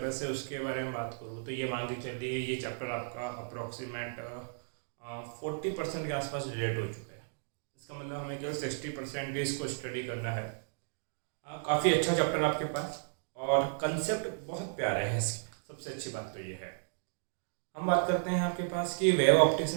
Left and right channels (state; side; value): silent; left; digital silence